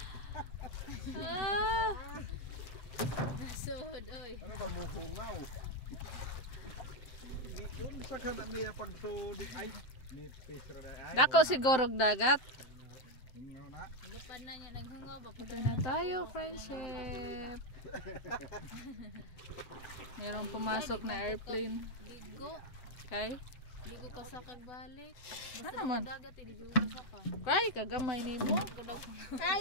Ah, Sod oy. Ano ba mo hungaw? Yun sa kanan niya pag sudik ay nipis ra ay. dako siguro og dagat. Hungaw na. Gapan na niya naghungaw ba? Ito na tayo, friendship. Merong pumasok na airplane. Ligo. Kay? Ligo ka sa kagbalik. Basta Ano man? dagat ligo ka sa pa. Kay, kagamay ni mo. Ligo daw.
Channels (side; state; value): right; late; 7.7 ms